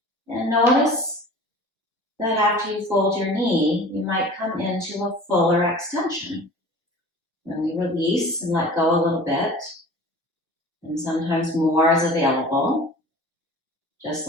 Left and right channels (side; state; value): both; normal; correlation 0.42